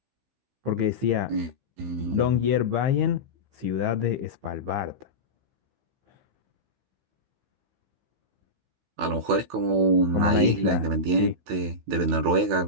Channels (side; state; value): left; late; 16 ms